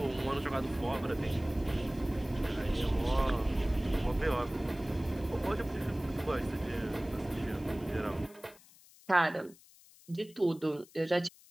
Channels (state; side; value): noise; left; hiss, 24 dB below the sound